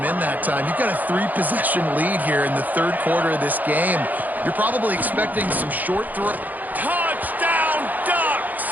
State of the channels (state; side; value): late; left; 0.082 ms